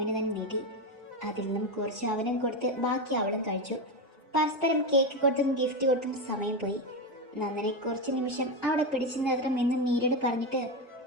തന്നെ നീട്ടി. അതിൽ നിന്നും കുറച്ച് അവനും കൊടുത്ത് ബാക്കി അവളും കഴിച്ചു. പരസ്പരം കേക്ക് കൊടുത്തും ഗിഫ്റ്റ് കൊടുത്തും സമയം പോയി. നന്ദനെ കുറച്ച് നിമിഷം അവിടെ പിടിച്ചു നിർത്തണം എന്ന് നീരട് പറഞ്ഞിട്ട്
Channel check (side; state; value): both; normal; correlation 0.12